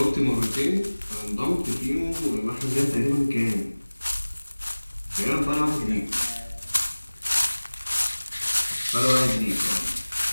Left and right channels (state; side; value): inverted; both; correlation -1.00